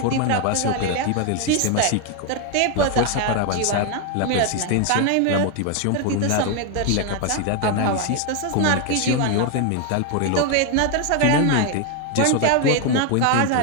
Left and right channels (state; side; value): different; both; correlation 0.01